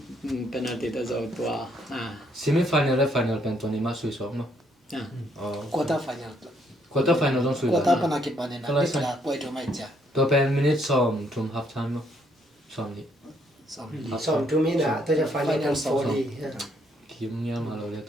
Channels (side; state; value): both; normal; correlation 0.70